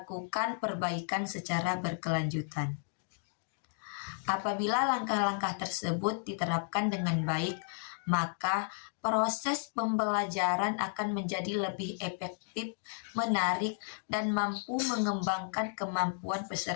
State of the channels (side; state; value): right; silent; digital silence